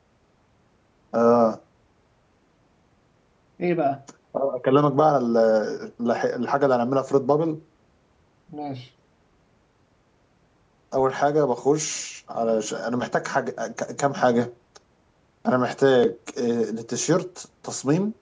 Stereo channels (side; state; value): both; identical; correlation 1.00